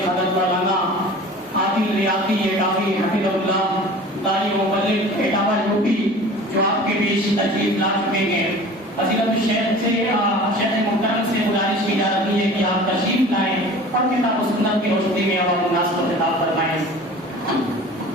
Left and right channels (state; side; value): normal; both; correlation 0.41